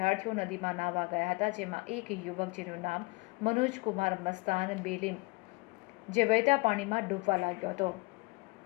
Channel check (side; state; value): right; quieter; 27.3 dB